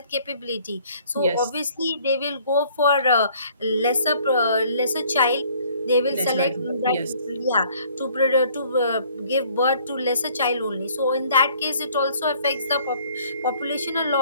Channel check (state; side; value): inverted; both; correlation -0.58